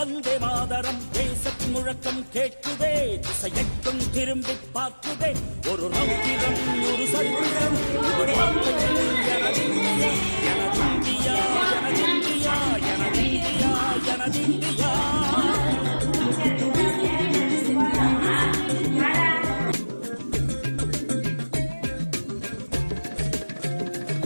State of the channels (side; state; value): both; inverted; correlation -1.00